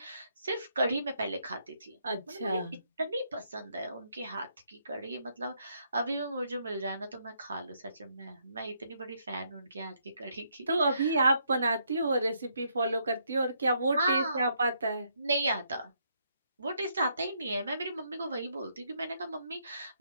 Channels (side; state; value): both; inverted; correlation -0.73